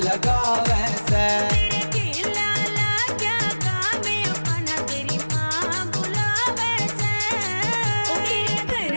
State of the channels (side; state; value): both; inverted; correlation -1.00